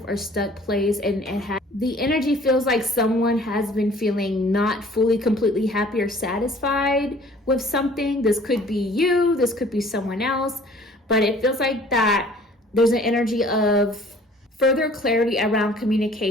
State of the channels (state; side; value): normal; both; correlation 0.52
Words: or stuck place, and the energy feels like someone has been feeling not fully, completely happy or satisfied with something. This could be you, this could be someone else, but it feels like that there's an energy of further clarity around